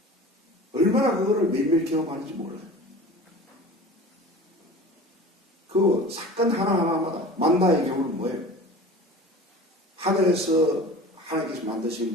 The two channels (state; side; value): normal; both; correlation 0.38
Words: 얼마나 그거를 매일매일 경험하는지 몰라요. 그 사건 하나하나마다 만나의 경우는 뭐예요? 하늘에서 하나님께서